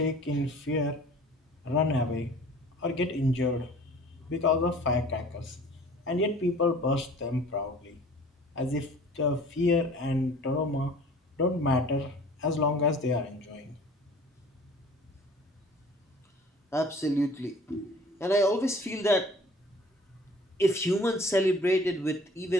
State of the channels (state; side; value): normal; both; correlation 0.48